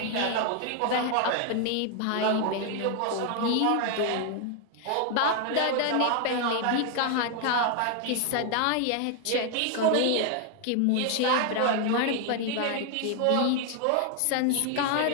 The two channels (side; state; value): both; different; correlation 0.00